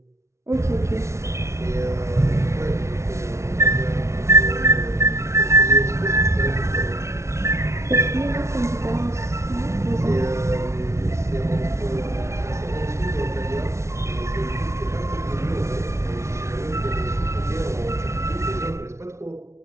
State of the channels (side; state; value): left; late; 0.13 ms